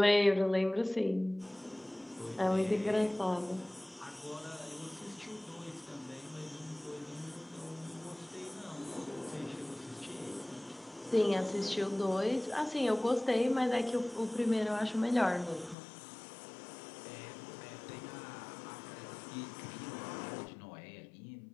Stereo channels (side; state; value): right; drops out; at 15.8 s